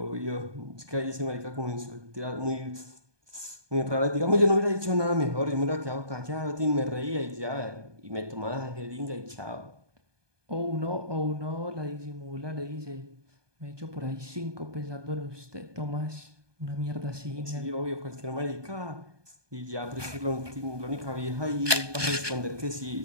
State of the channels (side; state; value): left; late; 1.2 ms